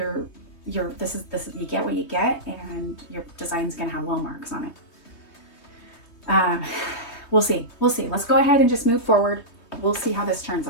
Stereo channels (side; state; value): right; late; 3.2 ms